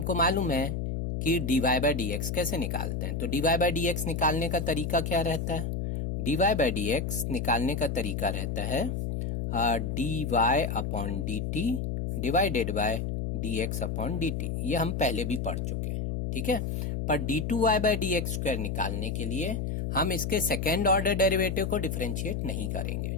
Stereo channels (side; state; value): left; noise; hum, 2 dB below the sound